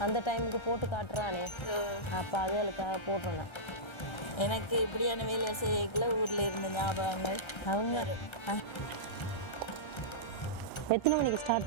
அந்த டைமுக்கு போட்டு காட்டுறானே, அப்போ அதுகளுக்காக போட்டுறேன். எனக்கு இப்படியான வேலை செய்யல ஊரில் இருந்த ஞாபகங்கள். அவங்க எத்தனை மணிக்கு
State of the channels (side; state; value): right; late; 1.3 ms